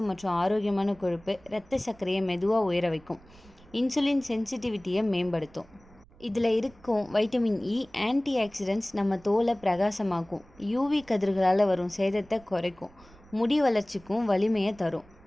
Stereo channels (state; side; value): noise; right; rumble, 25 dB below the sound